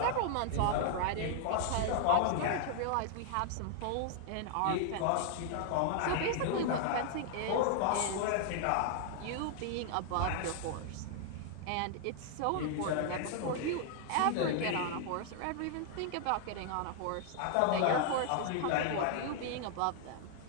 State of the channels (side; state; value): both; different; correlation 0.00